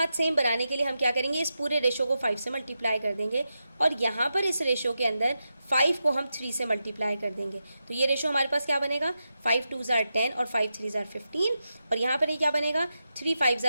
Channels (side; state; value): both; inverted; correlation -0.88